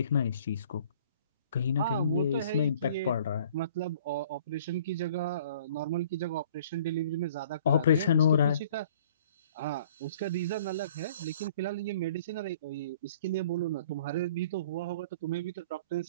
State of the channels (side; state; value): both; inverted; correlation -0.53